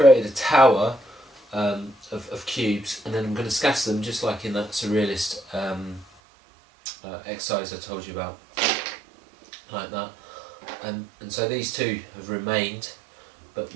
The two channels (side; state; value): left; drops out; at 6.1 s